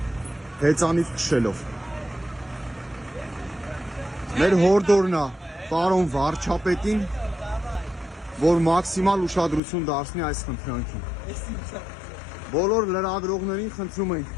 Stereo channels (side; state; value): right; drops out; at 9.6 s